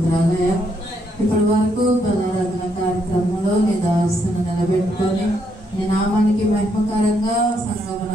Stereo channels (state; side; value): normal; both; correlation 0.75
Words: ఇప్పటి వరకు బలారాధన కార్యక్రమంలో నీ దాసును నిలబెట్టుకొని నీ నామానికి మహిమకరంగా